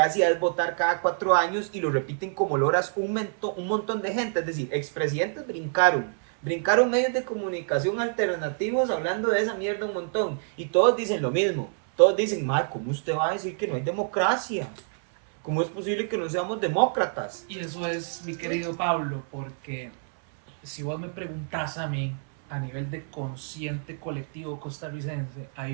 es votar cada 4 años y lo repiten como loras un montón de gente, es decir, expresidentes brincaron medios de comunicación alternativos hablando de esa mierda un montón. Y todos dicen lo mismo. Todos dicen, ¿cómo usted va a decir que no hay democracia? ¿Cómo es posible que no seamos demócratas? Y eso es, mi querido Pablo, porque si vos me preguntás a mí, a nivel de consciente colectivo costarricense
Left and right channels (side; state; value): left; silent; 60 dB below the other